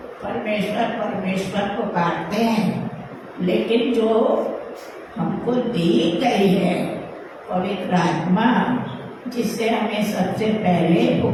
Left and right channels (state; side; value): identical; both; correlation 1.00